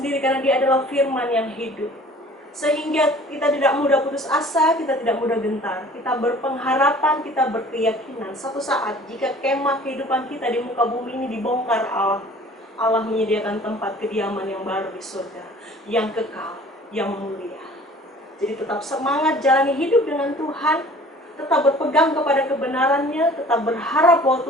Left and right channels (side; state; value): both; normal; correlation 0.48